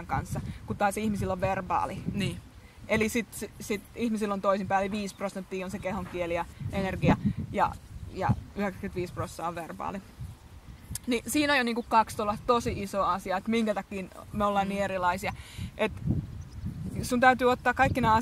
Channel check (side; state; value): both; identical; correlation 1.00